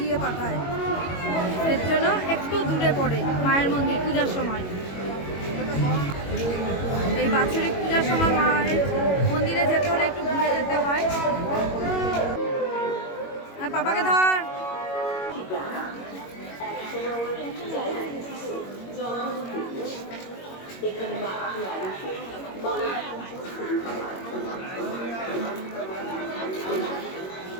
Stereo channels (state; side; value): late; right; 21 ms